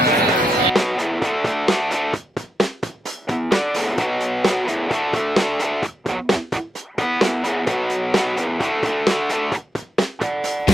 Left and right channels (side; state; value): both; normal; correlation 0.85